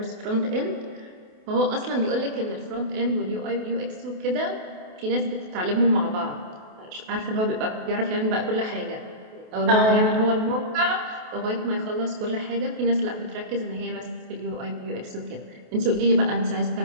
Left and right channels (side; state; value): left; late; 28 ms